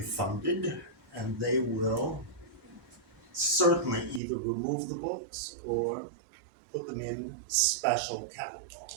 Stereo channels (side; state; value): left; drops out; at 4.2 s